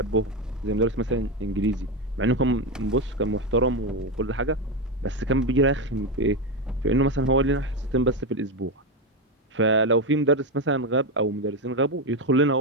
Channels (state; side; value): normal; both; correlation 0.11